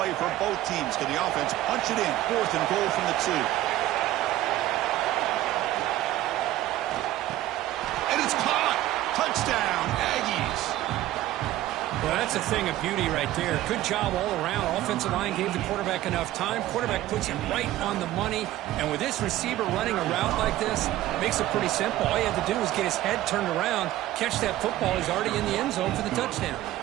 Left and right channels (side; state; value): left; quieter; 14.8 dB